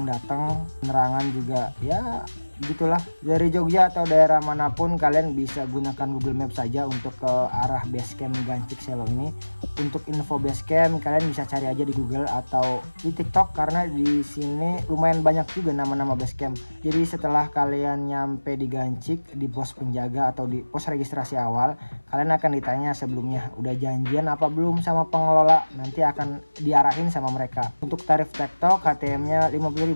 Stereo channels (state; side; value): inverted; both; correlation -1.00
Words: datang, penerangan juga ya gitulah. Dari Jogja atau daerah manapun kalian bisa gunakan Google Maps saja untuk ke arah base camp Gancik Selo ini. Untuk info base camp kalian bisa cari aja di Google atau di TikTok karena di sini lumayan banyak juga nama-nama base camp. Jadi setelah kalian nyampe di Gancik, di pos penjaga atau di pos registrasi awal, kalian akan ditanya sebelumnya udah janjian apa belum sama pengelola, nanti akan diarahin sama mereka. Untuk tarif TikTok HTM-nya